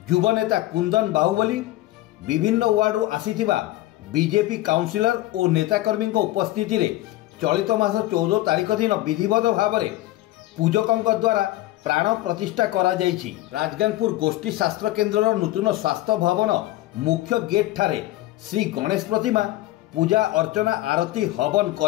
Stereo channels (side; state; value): right; quieter; 16.5 dB